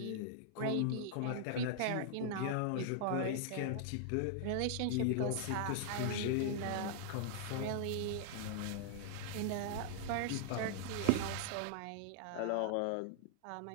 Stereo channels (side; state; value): both; different; correlation -0.01